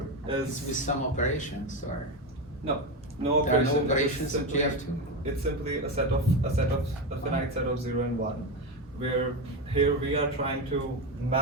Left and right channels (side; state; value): both; normal; correlation 0.15